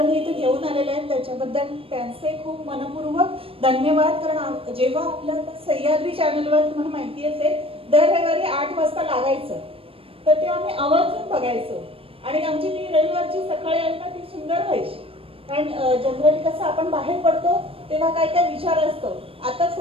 इथे घेऊन आलेले आहेत, त्याच्याबद्दल त्यांचे खूप मनपूर्वक धन्यवाद. कारण जेव्हा आपल्या सह्याद्री चॅनलवर तुम्हाला माहिती असेल दर रविवारी 8 वाजता लागायचं, तर तेव्हा आम्ही आवर्जून बघायचो आणि आमची ती रविवारची सकाळी आहे ना ती सुंदर व्हायची. कारण जनरली कसं आपण बाहेर पडतो तेव्हा काय काय विचार असतो. आता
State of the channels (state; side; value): late; left; 0.27 ms